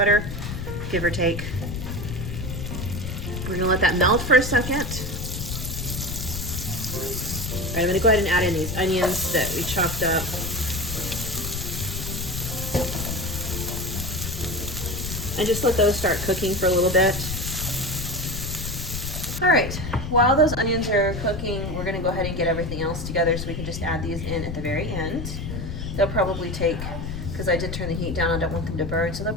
give or take. We're gonna let that melt for a second. All right, I'm gonna go ahead and add in these onions that we chopped up. And just let those start cooking for a little bit. All right, while those onions are cooking, we're gonna go ahead and get everything else together so we can just add these in at the very end. They'll probably take, because I did turn the heat down, I don't want them to burn, so they'll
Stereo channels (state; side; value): noise; left; rumble, 5 dB below the sound